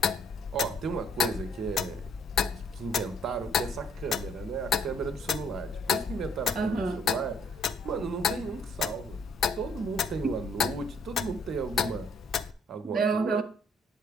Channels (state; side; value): normal; both; correlation 0.64